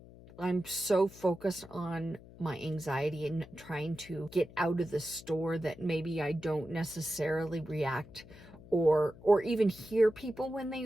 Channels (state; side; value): noise; left; hum, 20 dB below the sound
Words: so focused on my anxiety and trying to get out of the store that maybe I don't necessarily react or even hear people